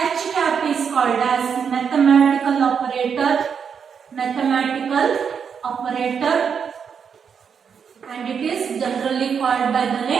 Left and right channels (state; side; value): quieter; left; 6.8 dB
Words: cap is called as mathematical operator, and it is generally called by the